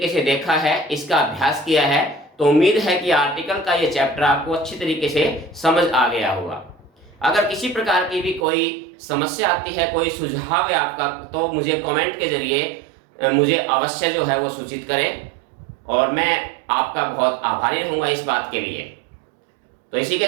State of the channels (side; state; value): left; drops out; at 8.5 s